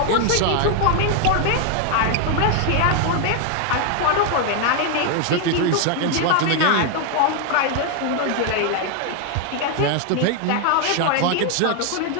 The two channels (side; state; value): both; different; correlation 0.01